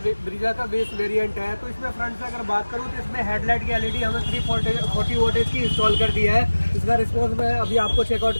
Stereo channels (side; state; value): both; inverted; correlation -1.00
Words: ब्रीजा का बेस वेरिएंट है। तो इसमें फ्रंट से अगर बात करूँ तो इसमें हेडलाइट की LED हमें 340 वोल्टेज की इंस्टॉल कर दी है। इसका रिस्पॉन्स मैं अभी आपको चेकआउट